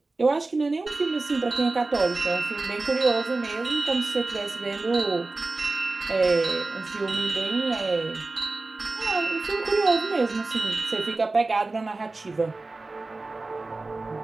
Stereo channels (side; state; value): left; quieter; 3.4 dB